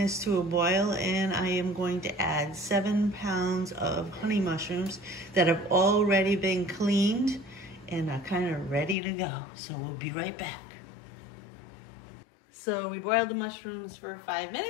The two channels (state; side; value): drops out; right; at 9.0 s